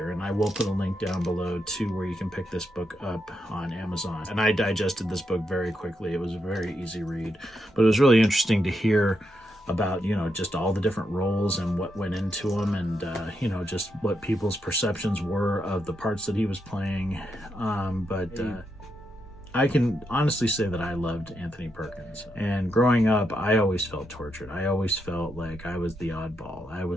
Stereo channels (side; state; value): both; normal; correlation 0.82